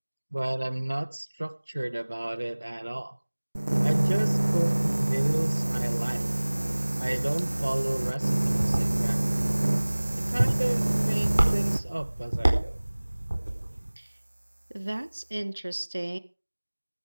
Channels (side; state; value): both; inverted; correlation -1.00